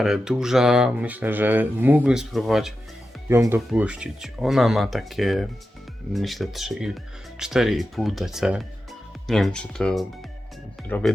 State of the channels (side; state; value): both; normal; correlation 0.91